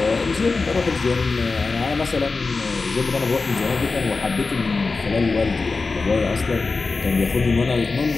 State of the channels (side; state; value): right; quieter; 4.0 dB